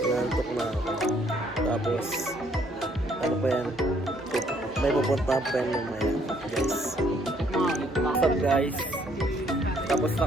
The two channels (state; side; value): normal; both; correlation 0.66